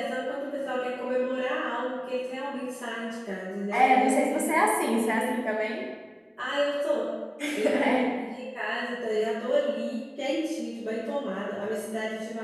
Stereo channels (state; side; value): identical; both; correlation 1.00